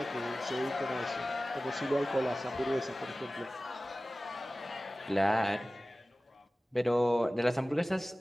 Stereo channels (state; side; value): normal; both; correlation 0.97